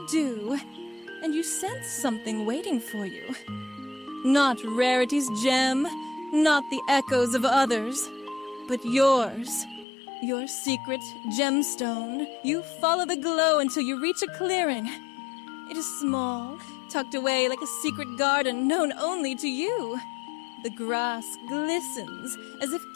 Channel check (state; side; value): drops out; right; at 9.9 s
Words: dew, and you sense something waiting for you. Not Rarity's gem, not the echoes of others, but yours. Your secret gemstone. You follow the glow until you reach a clearing. It is small, tucked away like a secret garden known only to you. The grass glistens as if